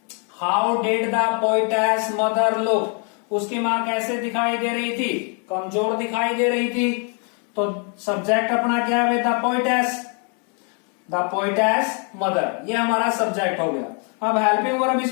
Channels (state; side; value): quieter; right; 38.7 dB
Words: how did the poetess mother look, उसकी मां कैसे दिखाई दे रही थी, कमजोर दिखाई दे रही थी। तो सब्जेक्ट अपना क्या है, the poetess, the poetess mother, ये हमारा सब्जेक्ट हो गया। अब हेल्पिंग वर्ब